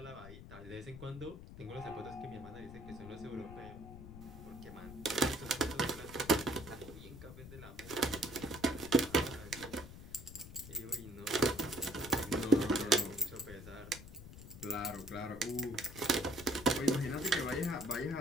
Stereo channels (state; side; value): noise; left; rumble, 14 dB below the sound